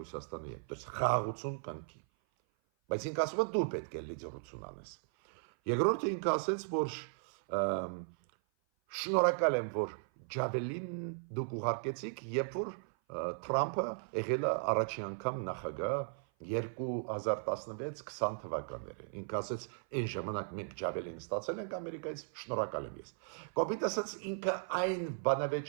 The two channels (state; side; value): silent; left; 53 dB below the other